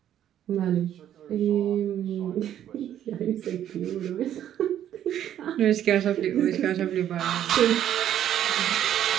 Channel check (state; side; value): quieter; left; 10.8 dB